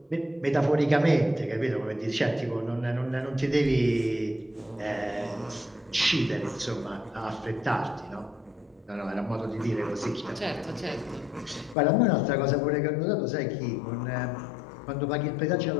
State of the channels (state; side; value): drops out; right; at 11.8 s